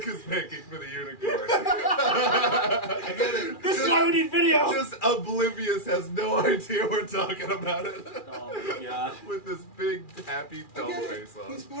is making for the unicorn. I get it. This is why we need video. Just oblivious, has no idea we're talking about it. Oh my god. With this big happy I doll get it. face on. He's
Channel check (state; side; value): late; right; 2.4 ms